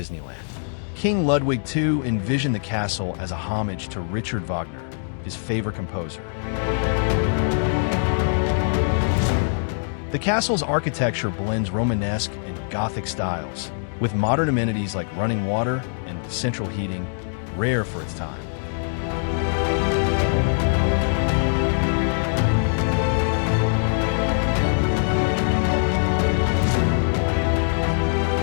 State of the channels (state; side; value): silent; right; digital silence